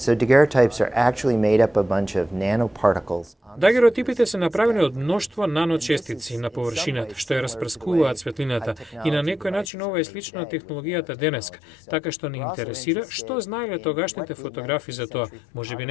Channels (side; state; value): right; drops out; at 9.7 s